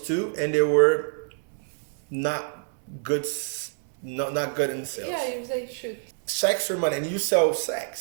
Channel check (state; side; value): silent; left; 61 dB below the other